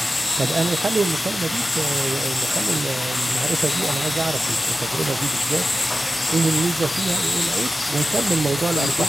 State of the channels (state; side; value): normal; both; correlation 0.94